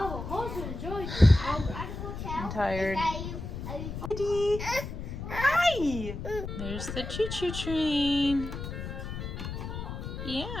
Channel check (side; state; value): left; noise; rumble, 7 dB below the sound